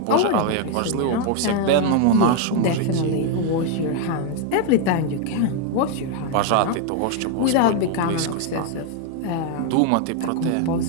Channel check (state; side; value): different; both; correlation 0.00